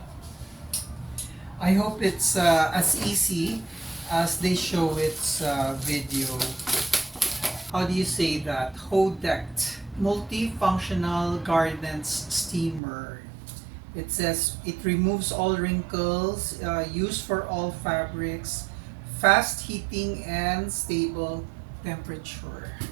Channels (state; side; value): drops out; left; at 12.8 s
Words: I hope it's as easy as they show its video. How do you say that? Hodect multifunctional gardens steamer. It says it removes all wrinkles, used for all fabrics, fast heating and stable temperature.